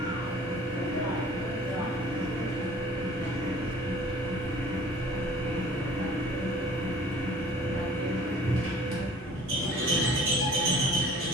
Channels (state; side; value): normal; both; correlation 0.50